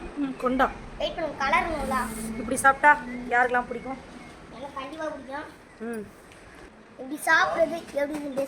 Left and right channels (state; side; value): identical; both; correlation 1.00